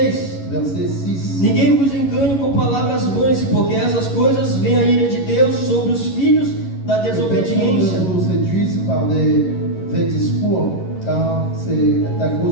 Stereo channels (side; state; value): right; late; 11 ms